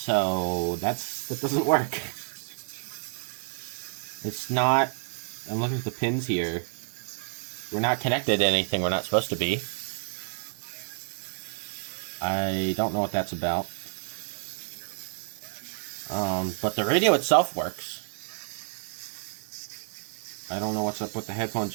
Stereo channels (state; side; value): silent; left; digital silence